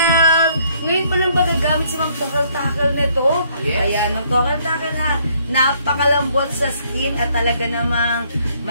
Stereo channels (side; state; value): both; inverted; correlation -0.67